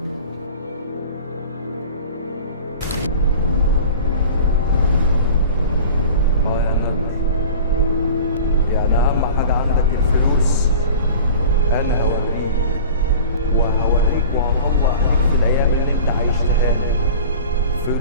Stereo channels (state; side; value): inverted; both; correlation -0.40